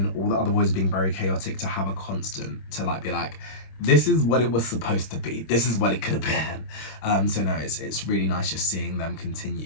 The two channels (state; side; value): late; right; 26 ms